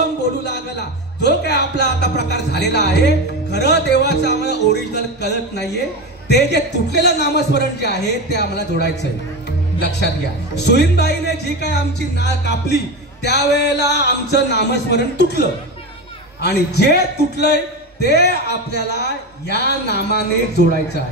बोलू लागला जो काय आपला आता प्रकार झालेला आहे. खरं देवाचं आम्हाला ओरिजिनल कळत नाहीये. ते जे तुटलेलं नामस्मरण जे आहे ते आम्हाला जोडायचंय. लक्षात घ्या. सुईनबाईने जी काय आमची नाळ कापली त्यावेळेला आमचं नामस्मरण तुटलं आणि जे तुटलंय ते आपल्याला या नामाने जोडायचं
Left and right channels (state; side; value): normal; both; correlation 0.20